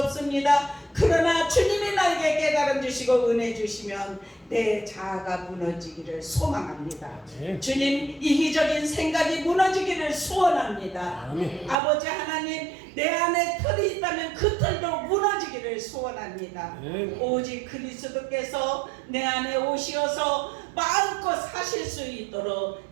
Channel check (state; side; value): drops out; left; at 11.8 s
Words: 그러나 주님이 나에게 깨달음 주시고 은혜 주시면 내 자아가 무너지기를 소망합니다. 주님 이기적인 생각이 무너지기를 소원합니다. 아버지 하나님 내 안에 틀이 있다면 그 틀도 무너지기를 소원합니다. 오직 그리스도께서 내 안에 오시어서 마음껏 사실 수 있도록